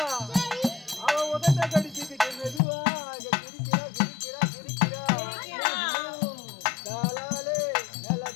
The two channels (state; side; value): drops out; right; at 2.6 s